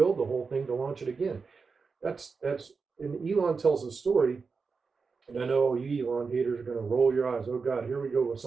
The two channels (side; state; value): left; quieter; 4.9 dB